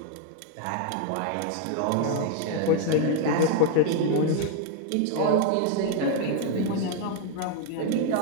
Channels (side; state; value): both; different; correlation 0.00